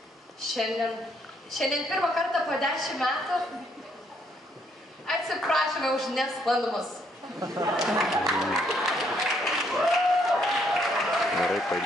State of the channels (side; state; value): both; normal; correlation 0.71